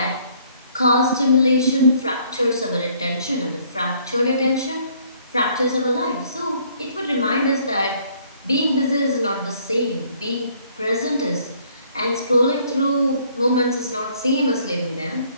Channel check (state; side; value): inverted; both; correlation -0.62